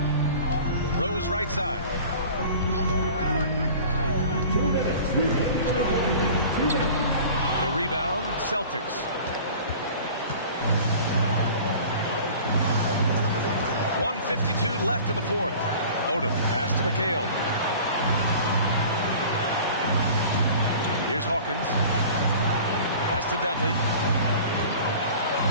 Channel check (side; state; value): both; inverted; correlation -0.43